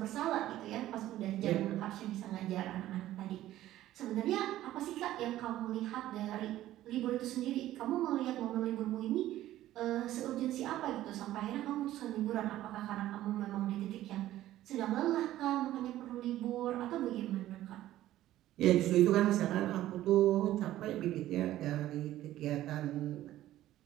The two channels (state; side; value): quieter; left; 14.1 dB